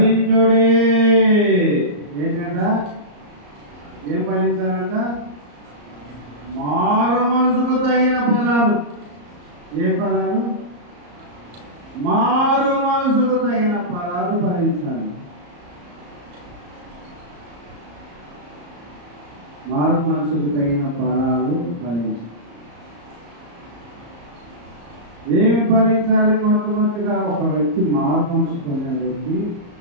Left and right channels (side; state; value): left; late; 34 ms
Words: ఏంటంట? ఏం ఫలించాలంట? మారు మనసుకు తగిన ఫలాలు. ఏ ఫలాలు? మారు మనసుకు తగిన ఫలాలు ఫలించాలి. మారు మనసుకు తగిన ఫలాలు ఫలించాలి. ఏమి ఫలించాలి? మొట్టమొదటిగా ఒక వ్యక్తి మారు మనసు పొందిన వ్యక్తి